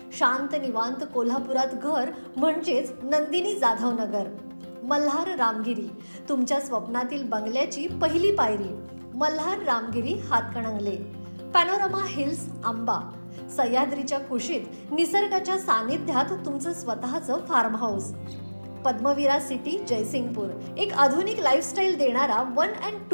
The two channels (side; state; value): both; inverted; correlation -1.00